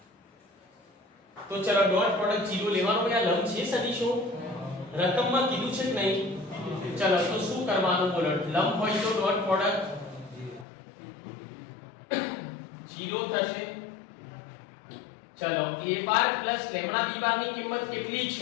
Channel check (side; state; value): right; drops out; at 10.7 s